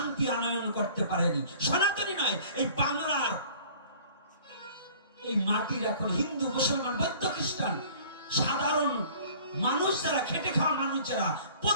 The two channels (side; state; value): both; inverted; correlation -0.49